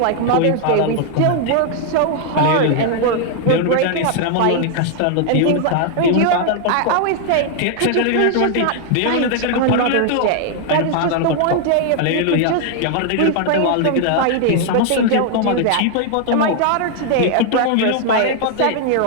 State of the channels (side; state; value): both; different; correlation 0.00